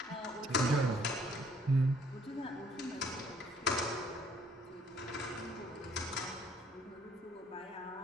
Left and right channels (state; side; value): normal; both; correlation 0.62